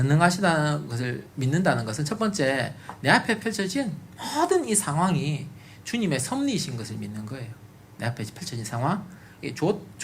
것을 믿는다는 것은 첫 번째, 내 앞에 펼쳐진 모든 이 상황이 주님의 섭리이신 것을 믿는 거예요. 내 앞에 펼쳐진 상황,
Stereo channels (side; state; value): both; identical; correlation 1.00